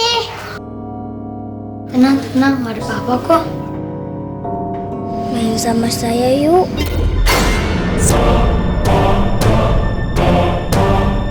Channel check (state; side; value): identical; both; correlation 1.00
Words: Tenang, gak ada apa-apa kok. Main sama saya yuk.